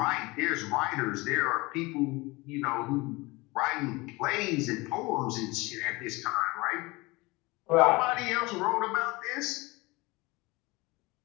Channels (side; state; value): right; quieter; 23.4 dB